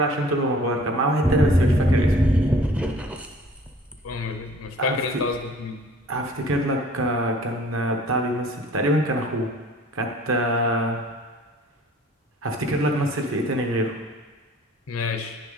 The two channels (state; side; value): normal; both; correlation 0.51